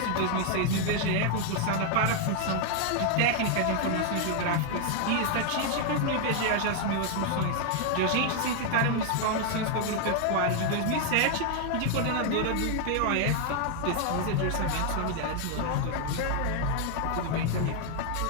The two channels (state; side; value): different; both; correlation 0.00